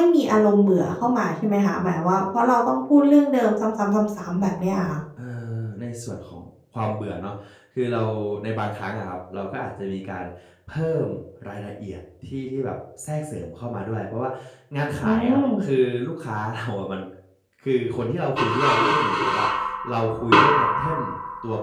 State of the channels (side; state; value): both; identical; correlation 1.00